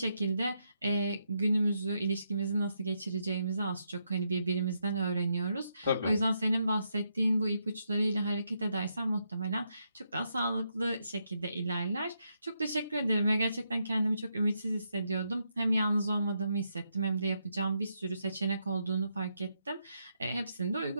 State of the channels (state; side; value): inverted; both; correlation -0.80